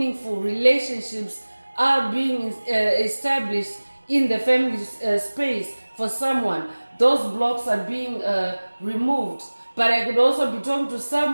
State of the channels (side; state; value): both; inverted; correlation -1.00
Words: relationships are being established in the family space for someone. Those blocks are being removed. But I could also be talking to